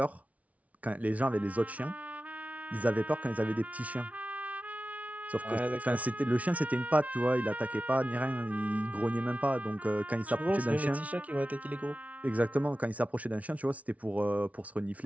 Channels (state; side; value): late; left; 0.068 ms